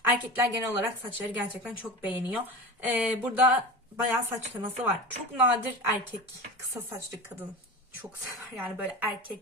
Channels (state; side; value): normal; both; correlation 0.29